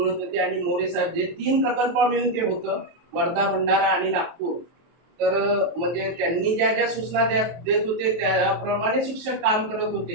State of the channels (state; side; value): late; left; 23 ms